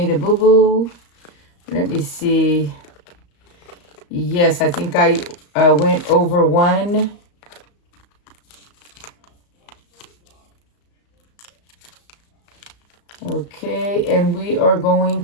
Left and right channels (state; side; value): late; right; 35 ms